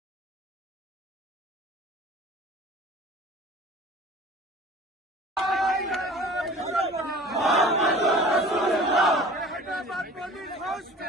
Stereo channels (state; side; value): normal; both; correlation 0.44